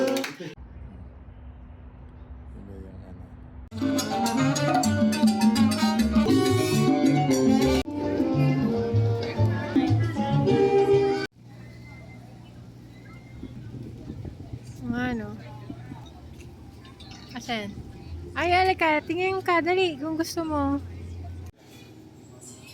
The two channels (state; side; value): identical; both; correlation 1.00